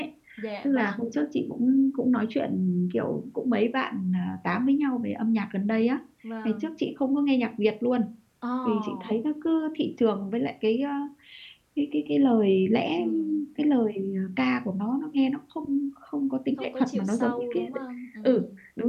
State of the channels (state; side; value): identical; both; correlation 1.00